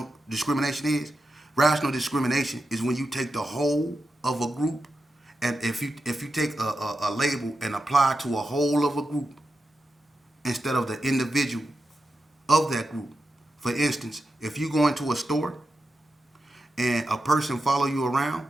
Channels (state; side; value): normal; both; correlation 0.89